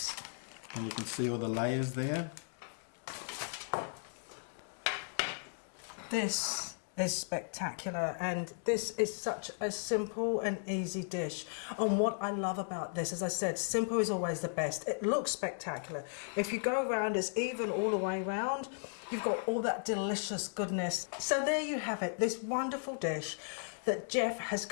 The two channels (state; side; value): silent; right; digital silence